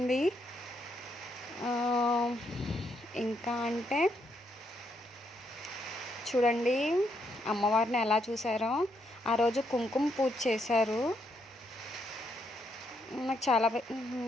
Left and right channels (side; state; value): both; normal; correlation 0.76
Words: ఇంకా అంటే చూడండి అమ్మవారిని ఎలా చూసారో. ఆ రోజు కుంకుమ పూజ చేశారు.